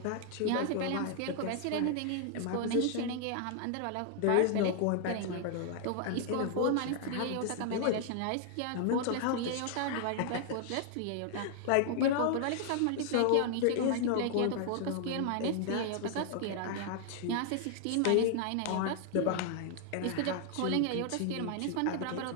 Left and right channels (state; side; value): different; both; correlation 0.00